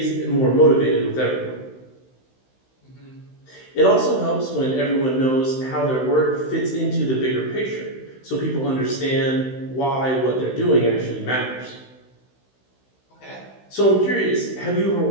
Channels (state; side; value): late; right; 16 ms